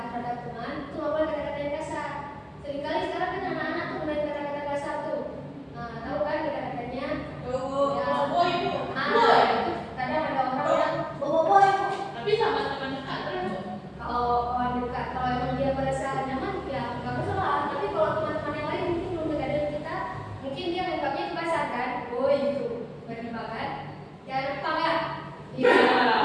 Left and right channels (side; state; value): both; identical; correlation 1.00